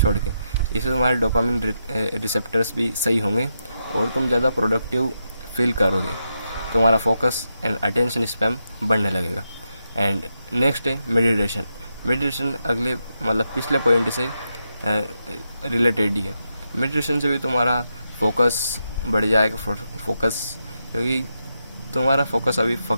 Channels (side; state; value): both; inverted; correlation -0.85